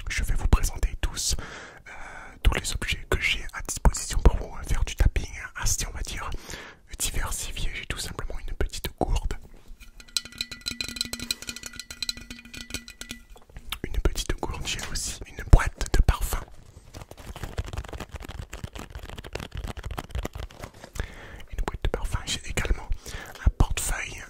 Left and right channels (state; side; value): identical; both; correlation 1.00